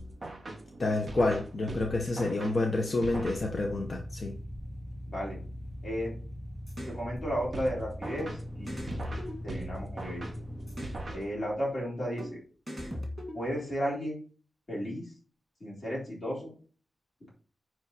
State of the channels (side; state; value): both; normal; correlation 0.88